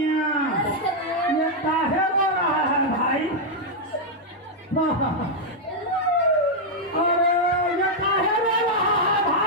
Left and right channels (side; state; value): both; normal; correlation -0.02